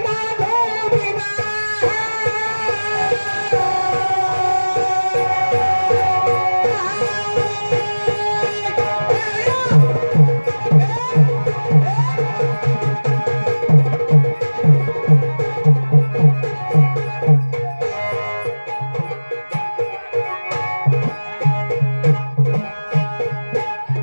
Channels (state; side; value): inverted; both; correlation -1.00